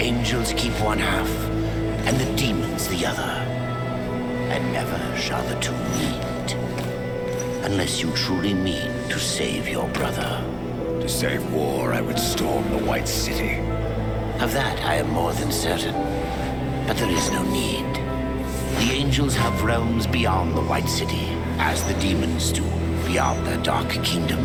keep one half, and the demons the other. And never shall the two meet. Unless you truly mean to save your brother. To save war, I would storm the White City. Of that I am more than certain. But there is no need. The angels have realms beyond the White City, as the demons do beyond their dark kingdom.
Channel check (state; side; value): identical; both; correlation 1.00